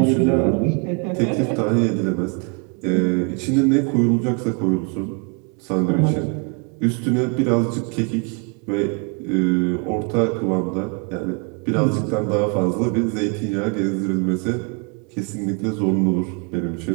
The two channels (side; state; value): left; quieter; 35.9 dB